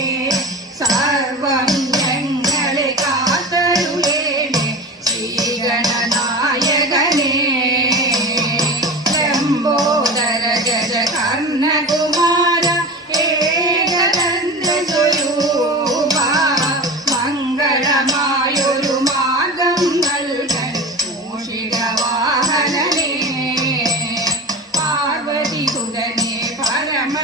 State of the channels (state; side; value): normal; both; correlation 0.31